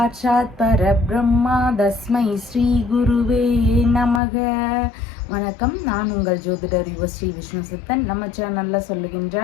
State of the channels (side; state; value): right; drops out; at 4.2 s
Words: परब्रह्मा तस्मै ஸ்ரீ குருவே நமக. வணக்கம், நான் உங்கள் ஜோதிடர் ஸ்ரீ விஷ்ணு சித்தன். நம்ம சேனலில்